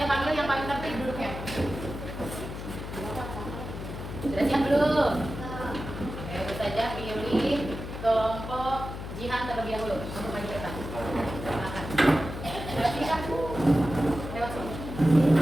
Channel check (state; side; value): noise; left; hum, 8 dB below the sound